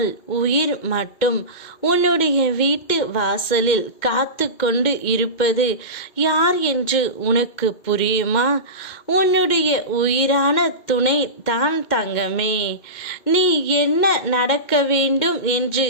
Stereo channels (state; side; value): late; right; 2.1 ms